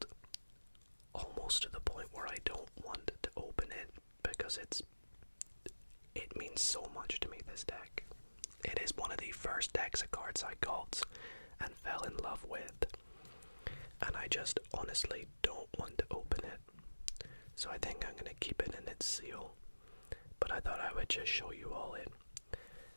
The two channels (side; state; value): both; inverted; correlation -1.00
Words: almost to the point where I don't want to open it, because it means so much to me, this deck. It is one of the first decks of cards I got and fell in love with, and I just honestly don't want to open it. So I think I'm going to keep it in its seal, but I thought I would just show you all it.